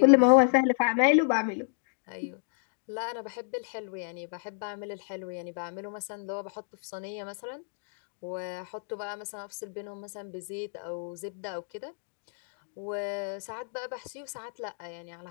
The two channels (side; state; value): right; silent; digital silence